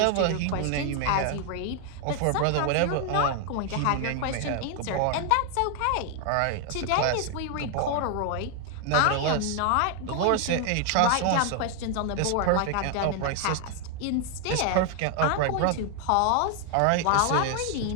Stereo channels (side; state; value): both; different; correlation 0.00